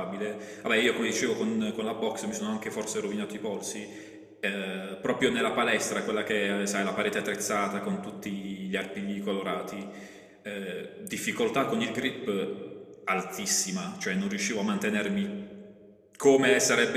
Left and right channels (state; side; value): identical; both; correlation 1.00